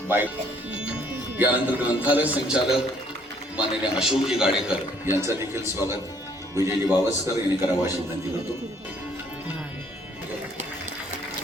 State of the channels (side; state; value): both; normal; correlation 0.63